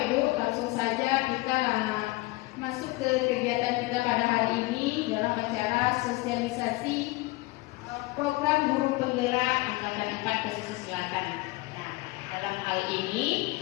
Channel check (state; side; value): quieter; right; 22.1 dB